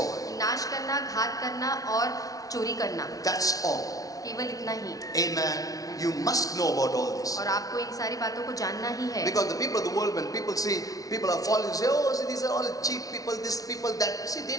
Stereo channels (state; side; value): late; right; 0.18 ms